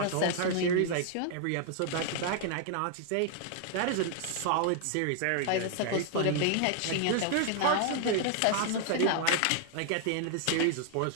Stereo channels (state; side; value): different; both; correlation 0.00